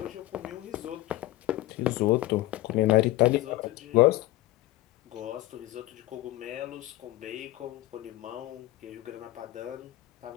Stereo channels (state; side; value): quieter; right; 16.7 dB